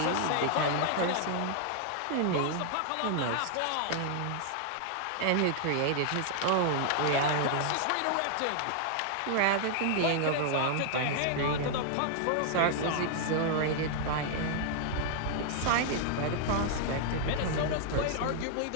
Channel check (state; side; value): different; both; correlation -0.01